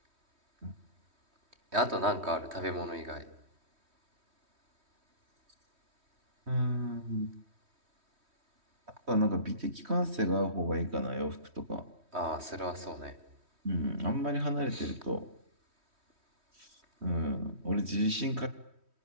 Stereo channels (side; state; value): left; late; 3.1 ms